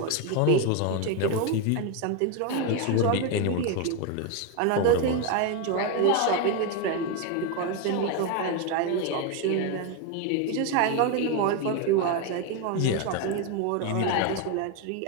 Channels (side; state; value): both; different; correlation 0.02